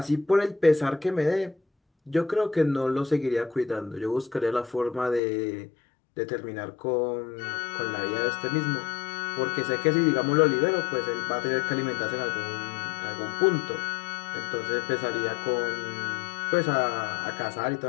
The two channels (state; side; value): drops out; right; at 5.2 s